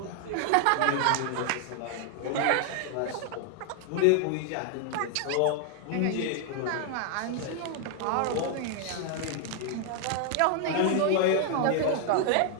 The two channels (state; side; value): different; both; correlation 0.00